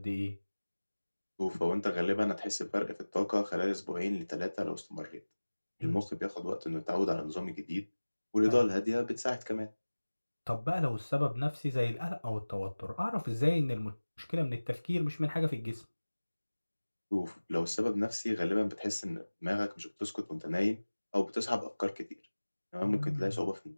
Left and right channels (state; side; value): inverted; both; correlation -1.00